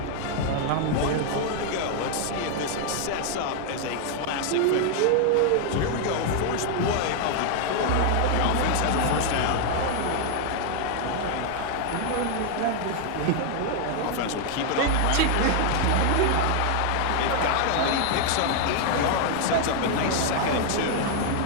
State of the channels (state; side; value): different; both; correlation 0.00